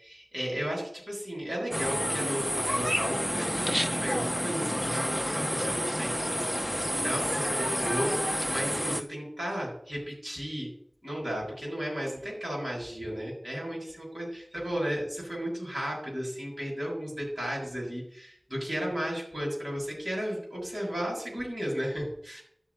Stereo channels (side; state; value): both; normal; correlation 0.97